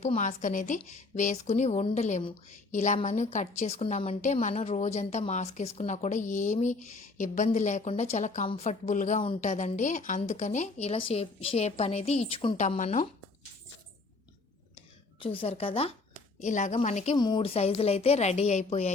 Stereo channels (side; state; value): right; quieter; 3.6 dB